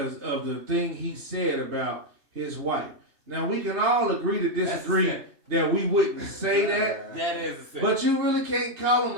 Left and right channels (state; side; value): late; left; 2.9 ms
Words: of the thing he said about his wife. Now we can all agree to disagree that we wouldn't say that. That is a simp. But you really can't call him